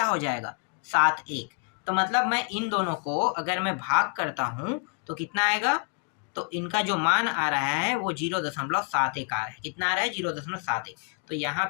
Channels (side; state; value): right; quieter; 39.9 dB